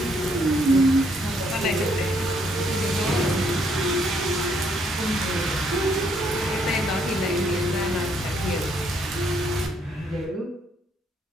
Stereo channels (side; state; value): both; normal; correlation 0.70